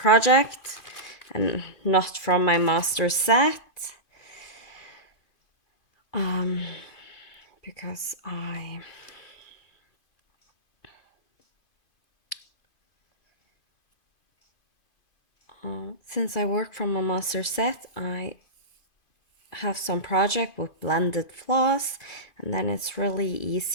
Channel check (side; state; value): right; late; 2.5 ms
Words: and not from my master set. Because since I work from a master set, I have some project with blended floss, and then it's really